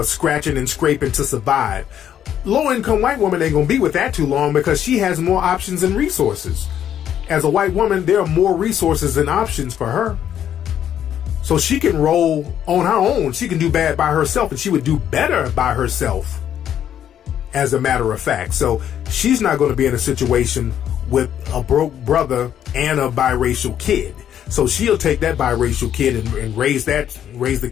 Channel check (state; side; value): quieter; right; 10.0 dB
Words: scratching and scraping to survive. Low income white woman ain't gonna be with that too long because she has more options and resources. As a white woman, there are more resources and options for her. So she can roll on her own. She can do bad by herself, and she would do better by herself, as a matter of fact. So she's not going to be in a situation with a broke brother and a biracial kid. So she'll take that biracial kid and raise the